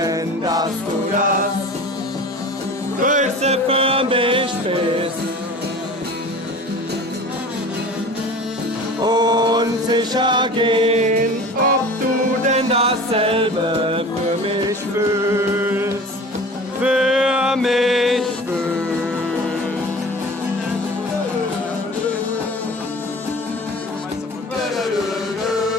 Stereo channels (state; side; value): normal; both; correlation 0.39